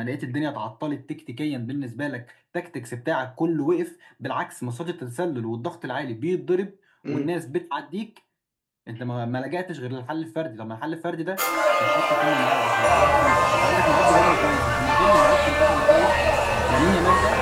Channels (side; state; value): both; identical; correlation 1.00